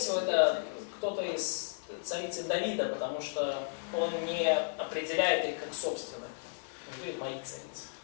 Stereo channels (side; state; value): right; silent; 55 dB below the other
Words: это кто-то из царицы Давида, потому что он не определяет их как собственных. Он говорит мои царицы.